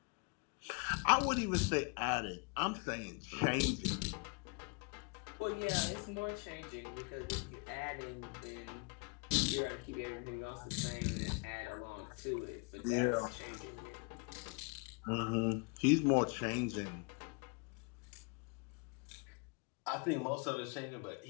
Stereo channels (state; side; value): quieter; right; 32.6 dB